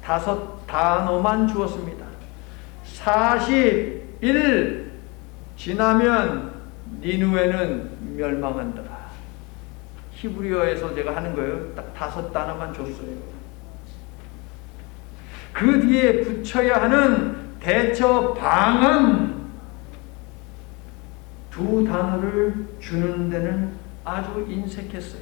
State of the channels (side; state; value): right; quieter; 27.6 dB